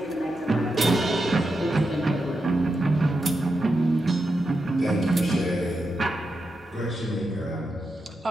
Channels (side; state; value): both; normal; correlation 0.87